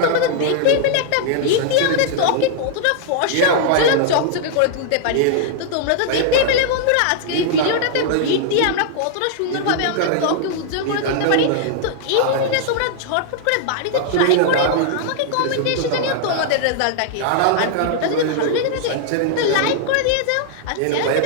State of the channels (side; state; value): both; different; correlation -0.01